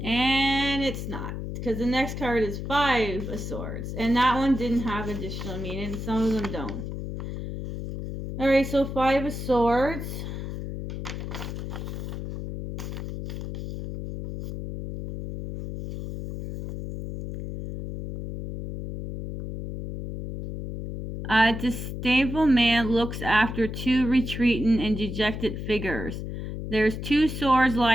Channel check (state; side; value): noise; left; hum, 6 dB below the sound